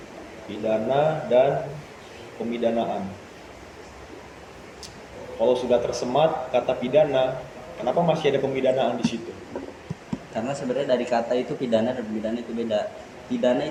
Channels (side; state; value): both; identical; correlation 1.00